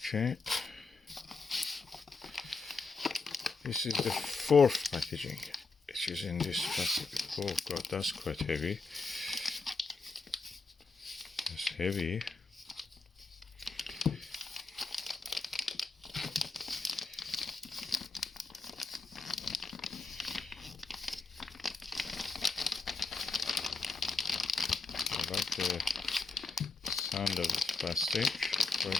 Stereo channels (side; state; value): right; quieter; 4.0 dB